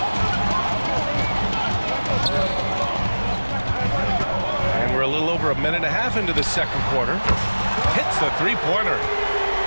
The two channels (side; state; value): both; inverted; correlation -1.00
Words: And we're a little over a minute and a half into the second quarter. Hits the 3-pointer.